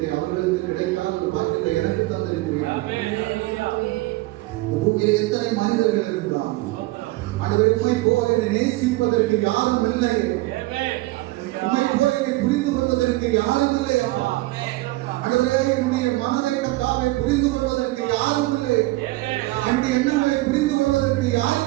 அவர்களுக்கு கிடைக்காத ஒரு பாக்கியத்தை எனக்கு தந்திருக்கிறீர்கள். பூமியில் எத்தனை மனிதர்கள் இருந்தால் ஆண்டவரே உம்மை போல நேசிப்பதற்கு யாரும் இல்லை, உம்மை போல புரிந்து கொள்வதற்கு யாரும் இல்லை. அப்பா ஆண்டவரே என்னுடைய மனதை கர்த்தாவே புரிந்து கொள்வதற்கு யாரும் இல்லை, என்னுடைய எண்ணங்களை புரிந்து கொள்வதற்கு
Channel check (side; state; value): left; quieter; 19.9 dB